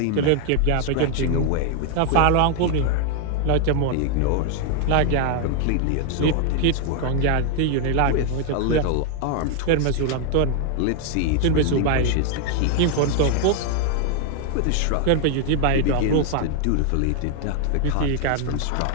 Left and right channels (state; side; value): different; both; correlation 0.00